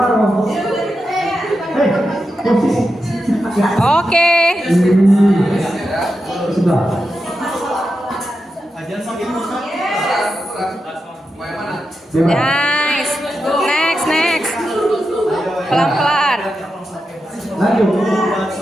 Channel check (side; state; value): both; normal; correlation 0.88